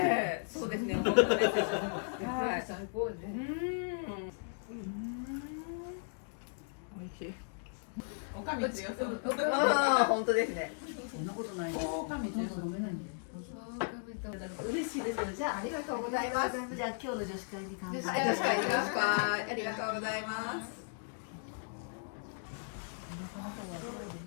り。そうですね。本当です。はい、最高ね。美味しい。おかみ強そう。ああ、本当ですね。そんなことない。おかみ強そう。飲めないんで。嬉しいです。じゃあありがとうございます。じゃあ今日の女子会に乾杯。女子会、ありがとうございます。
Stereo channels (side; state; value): right; silent; digital silence